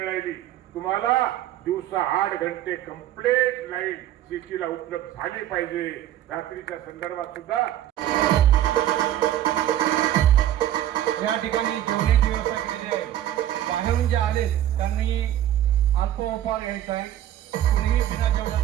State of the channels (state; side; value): quieter; left; 12.2 dB